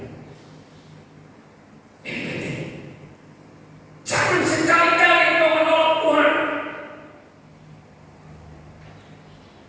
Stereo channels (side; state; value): both; identical; correlation 1.00